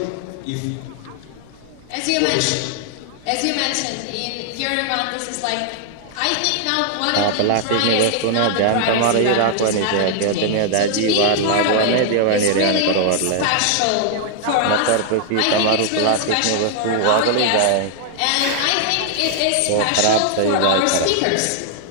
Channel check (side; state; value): both; different; correlation 0.00